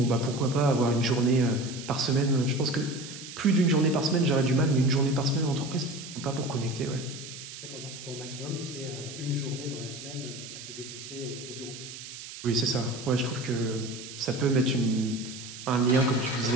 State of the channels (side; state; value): right; noise; hiss, 12 dB below the sound